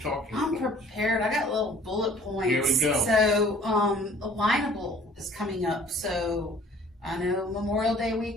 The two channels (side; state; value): both; normal; correlation 0.53